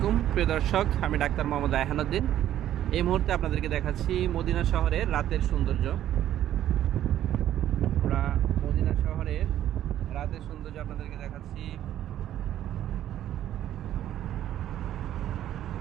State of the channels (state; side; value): quieter; left; 11.9 dB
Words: প্রিয় দর্শক, আমি ডাক্তার মোহাম্মদ রায়হানুদ্দিন। এই মুহূর্তে আপনাদেরকে দেখাচ্ছি মদিনা শহরের রাতের সৌন্দর্য। আমরা মদিনা শহরের রাতের সৌন্দর্য আপনাদেরকে দেখাচ্ছি।